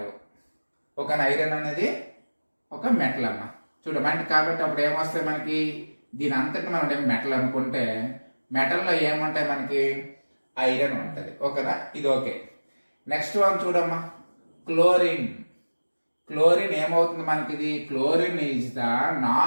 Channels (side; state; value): both; inverted; correlation -1.00